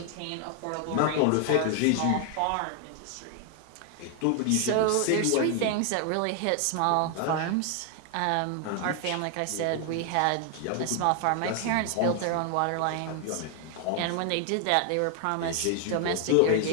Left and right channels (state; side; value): different; both; correlation 0.00